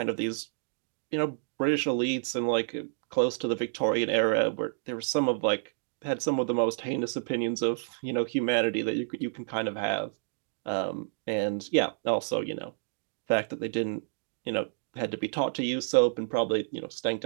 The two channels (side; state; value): left; silent; digital silence